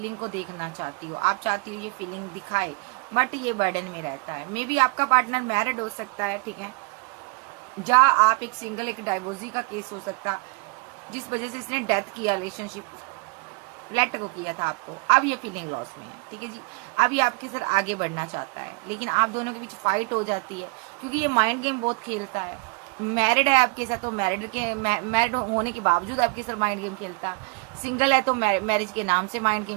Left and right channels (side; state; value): left; quieter; 31.0 dB